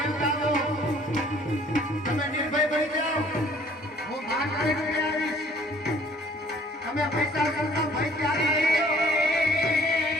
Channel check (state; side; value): normal; both; correlation 0.56